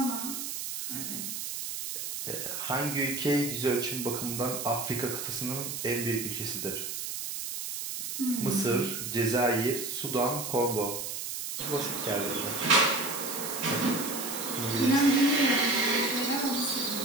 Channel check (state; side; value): noise; right; hiss, 5 dB below the sound